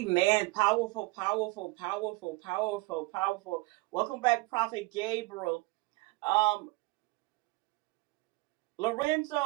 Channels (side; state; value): left; quieter; 23.1 dB